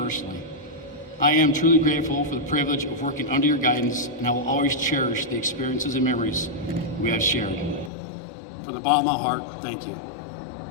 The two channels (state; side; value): drops out; right; at 7.9 s